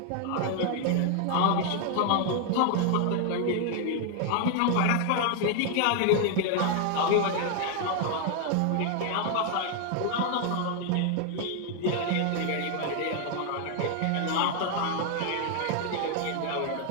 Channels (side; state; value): both; different; correlation 0.00